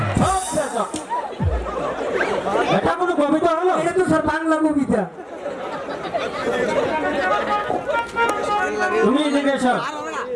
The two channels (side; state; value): both; identical; correlation 1.00